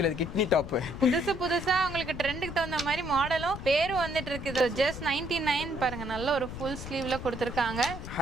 அது கிட்னி டாப். புதுசா உங்களுக்கு ட்ரெண்டுக்கு தகுந்த மாதிரி மாடலும் பேரும் வந்துட்டு இருக்குது. ஜஸ்ட் 99 பாருங்க. நல்ல ஒரு ஃபுல் ஸ்லீவ்ல கொடுத்திருக்காங்க.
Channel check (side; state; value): left; noise; rumble, 9 dB below the sound